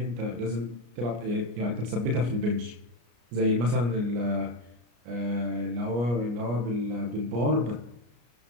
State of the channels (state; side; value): late; left; 34 ms